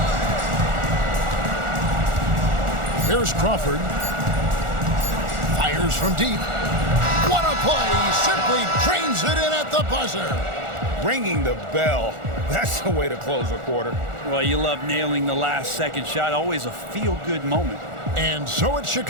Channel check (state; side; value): late; left; 1.4 ms